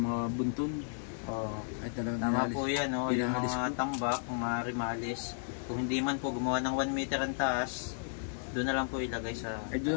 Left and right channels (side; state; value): right; silent; digital silence